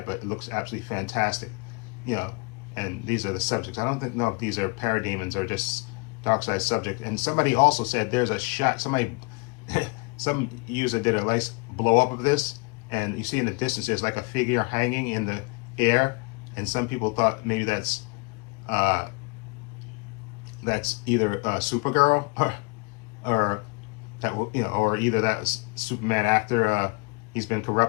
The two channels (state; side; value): quieter; right; 30.4 dB